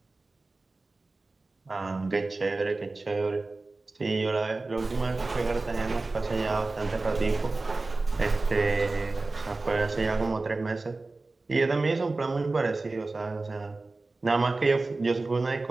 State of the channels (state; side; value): quieter; left; 3.4 dB